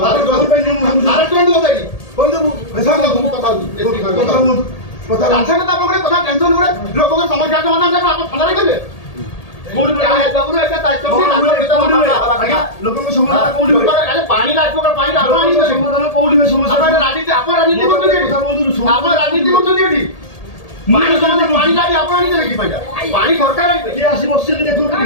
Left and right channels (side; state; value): right; late; 1.8 ms